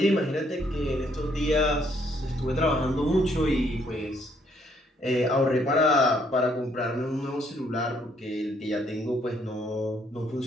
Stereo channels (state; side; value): normal; both; correlation 0.69